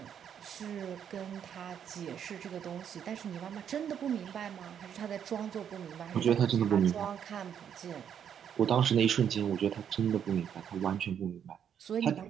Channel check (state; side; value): quieter; left; 8.6 dB